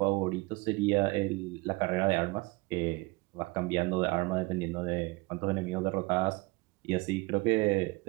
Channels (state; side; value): quieter; left; 24.5 dB